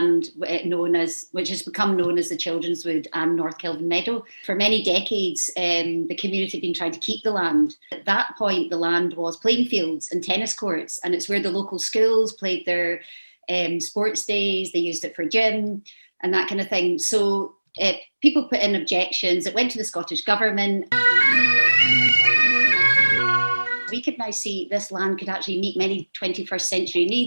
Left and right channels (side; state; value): both; inverted; correlation -1.00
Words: which has become known as the Children's Wood and North Kelvin Meadow. For many decades, the community had been trying to keep the land. At that point, the land was playing fields and tennis courts, and it's where the local schools played their sports days. They used it for gym and that kind of thing. So people put in objections. It went to the Scottish Government. We could now see this land could actually meet many 21st century